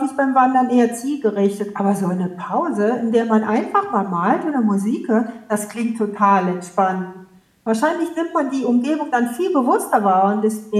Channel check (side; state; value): both; identical; correlation 1.00